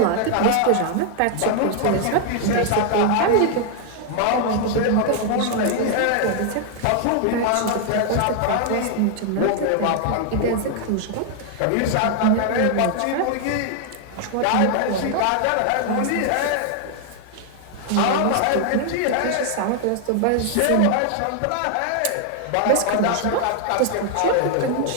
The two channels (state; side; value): different; both; correlation 0.00